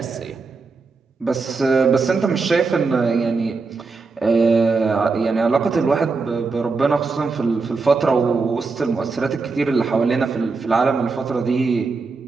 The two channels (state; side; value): quieter; left; 4.3 dB